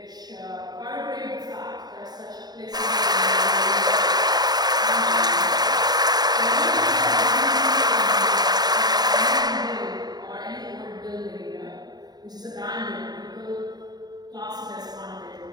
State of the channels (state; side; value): late; left; 0.20 ms